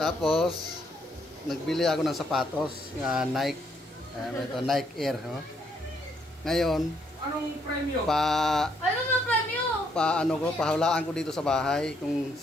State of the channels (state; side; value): normal; both; correlation 0.72